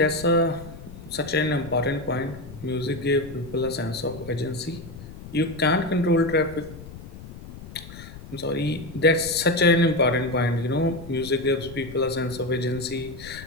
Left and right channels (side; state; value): left; noise; rumble, 15 dB below the sound